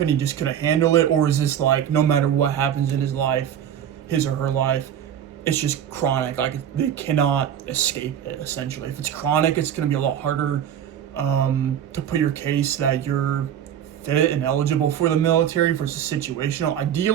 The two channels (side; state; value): left; quieter; 9.5 dB